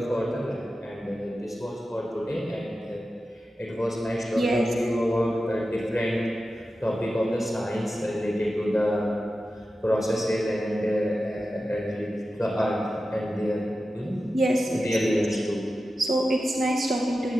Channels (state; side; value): normal; both; correlation 0.93